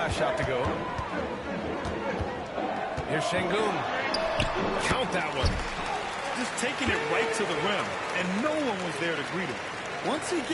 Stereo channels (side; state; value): both; identical; correlation 1.00